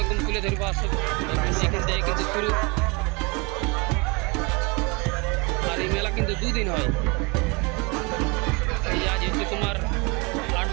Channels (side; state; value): left; quieter; 28.7 dB